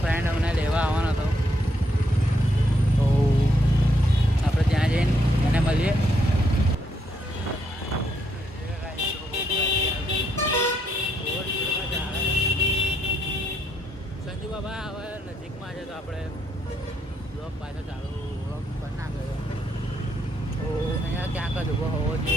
ફ્રેન્ડ અમને લેવા આવવાનો હતો તો આપણે ત્યાં જઈને એને મળીએ. સંજુ બાબા હવે નજીકમાં છે તો આપણે બ્લોગ પાછો ચાલુ બ્લોગ પણ ના કર્યો તો અહીંયા ક્યાંક જ ઊભો હોવો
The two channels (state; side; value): normal; both; correlation 0.75